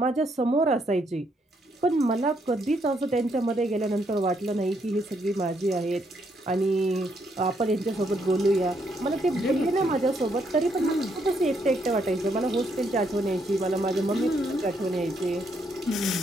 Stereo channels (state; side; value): normal; both; correlation 0.74